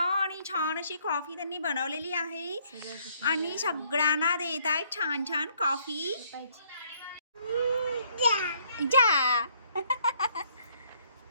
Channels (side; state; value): both; inverted; correlation -0.66